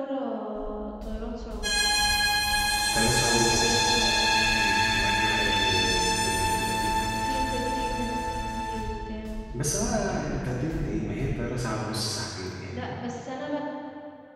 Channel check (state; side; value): identical; both; correlation 1.00